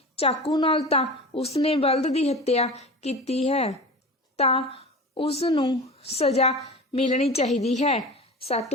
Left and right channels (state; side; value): normal; both; correlation 0.33